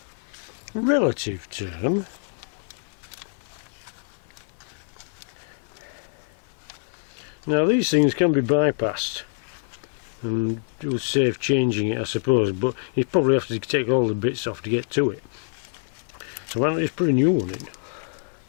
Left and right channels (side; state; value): right; silent; 60 dB below the other